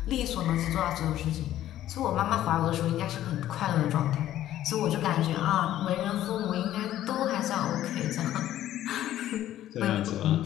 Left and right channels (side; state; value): right; quieter; 12.8 dB